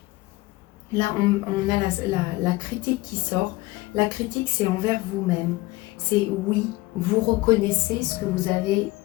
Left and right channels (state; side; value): quieter; right; 20.3 dB